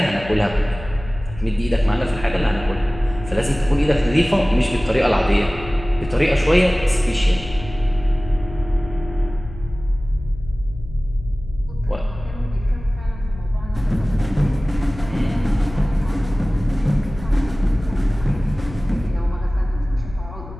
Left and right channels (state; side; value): noise; left; hum, 14 dB below the sound